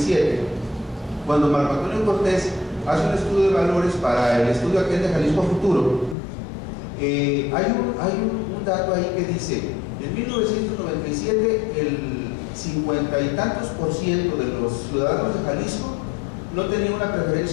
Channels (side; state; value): right; drops out; at 6.2 s